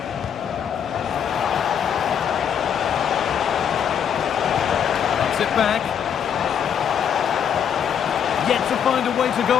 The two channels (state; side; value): quieter; right; 8.3 dB